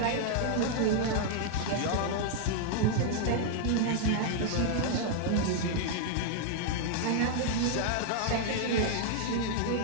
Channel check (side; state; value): both; different; correlation -0.01